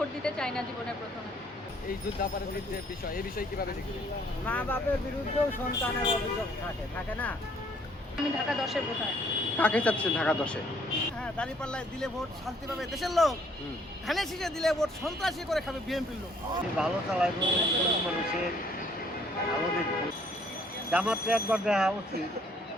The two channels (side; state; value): both; normal; correlation 0.63